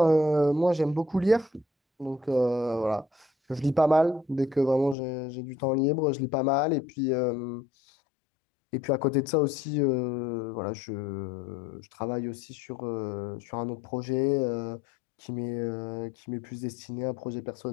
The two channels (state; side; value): drops out; right; at 5.0 s